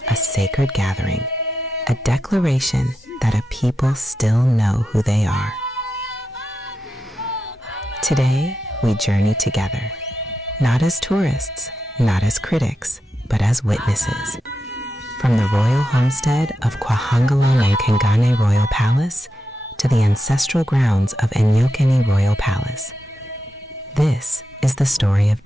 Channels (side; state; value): both; normal; correlation 0.88